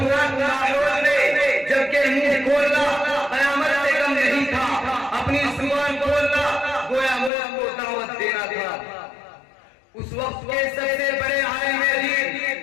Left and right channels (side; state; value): right; drops out; at 7.3 s